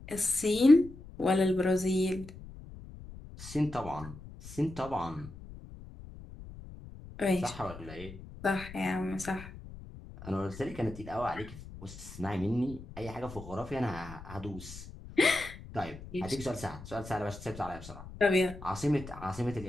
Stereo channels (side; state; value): left; noise; rumble, 15 dB below the sound